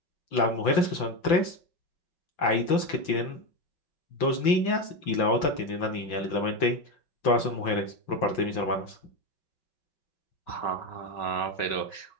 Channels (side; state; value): right; late; 5.8 ms